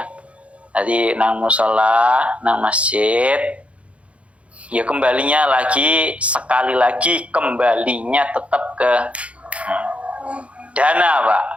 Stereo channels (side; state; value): left; late; 0.063 ms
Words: Tadi nang musola, nang masjid, ya kembalinya lagi sekali lagi kembalinya tetap ke dana, Pak.